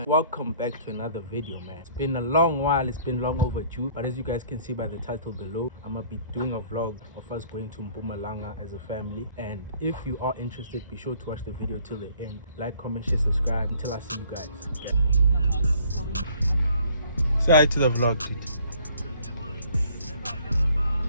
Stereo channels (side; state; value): both; inverted; correlation -0.58